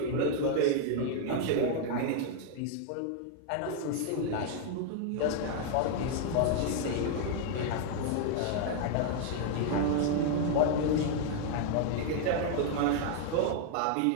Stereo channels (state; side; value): different; both; correlation 0.00